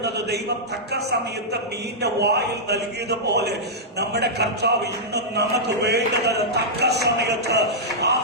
ദൈവം തക്ക സമയത്ത് മീന്റെ വായിൽ നൽകിയതുപോലെ നമ്മുടെ കർത്താവ് ഇന്നും നമുക്ക് വേണ്ടുന്നത് തക്ക സമയത്ത്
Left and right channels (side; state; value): both; normal; correlation -0.11